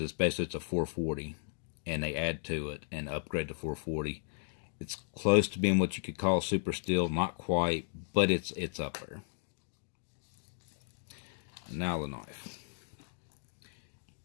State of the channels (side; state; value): right; silent; digital silence